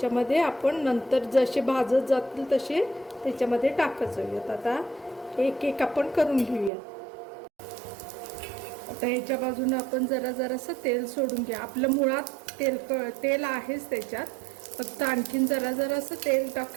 आपण नंतर जसे भाजत जातील तसे त्याच्यामध्ये टाकत जाऊयात. आता एक एक आपण करून घेऊया. आता ह्याच्या बाजूने आपण जरासं तेल सोडून घ्या. आपलं मुळात तेल आहेच त्याच्यात, फक्त आणखीन जरासं तेल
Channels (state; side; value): drops out; left; at 6.7 s